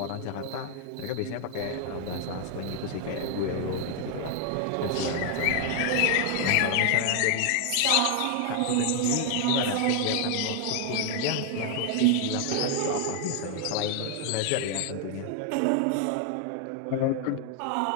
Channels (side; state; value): both; different; correlation 0.00